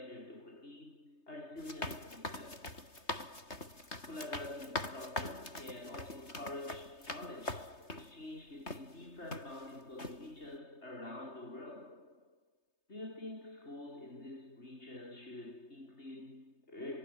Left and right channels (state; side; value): late; right; 3.3 ms